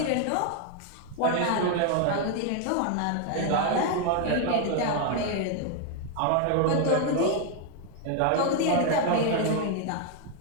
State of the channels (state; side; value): different; both; correlation 0.01